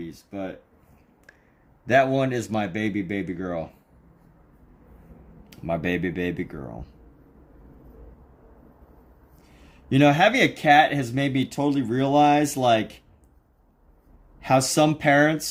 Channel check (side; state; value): both; identical; correlation 1.00